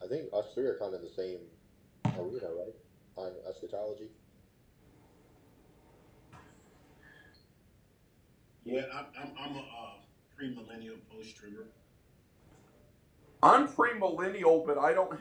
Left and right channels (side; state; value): both; identical; correlation 1.00